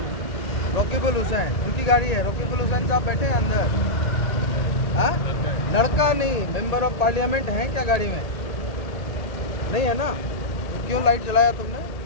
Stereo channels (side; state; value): right; late; 1.9 ms